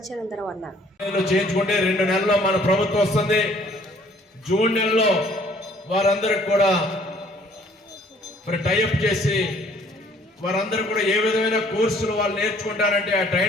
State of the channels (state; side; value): normal; both; correlation 0.59